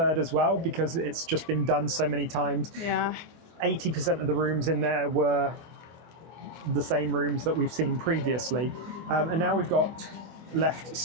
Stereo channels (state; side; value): late; left; 24 ms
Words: 3rd as well, because it's just been done so many times. Yeah. 80% of the rooms in there were the same rooms that we've seen previously, and now we've got left